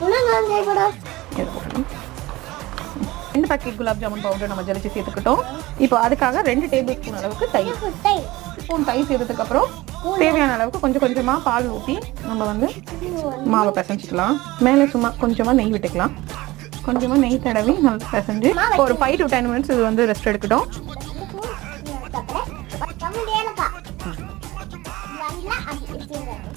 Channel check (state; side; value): quieter; left; 19.4 dB